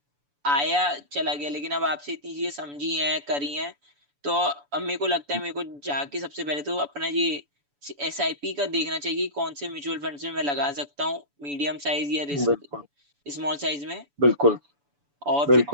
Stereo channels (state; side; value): late; left; 7.0 ms